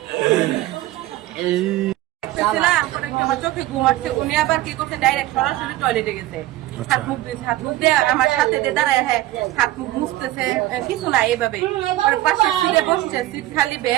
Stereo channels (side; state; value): left; quieter; 16.1 dB